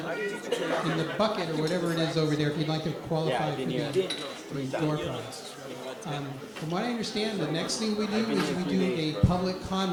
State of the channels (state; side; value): identical; both; correlation 1.00